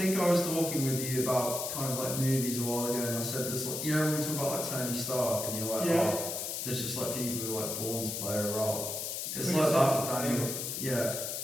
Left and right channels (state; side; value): noise; left; hiss, 4 dB below the sound